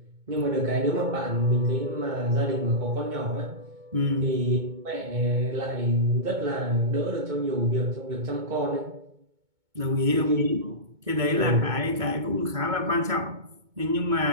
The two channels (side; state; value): left; late; 2.2 ms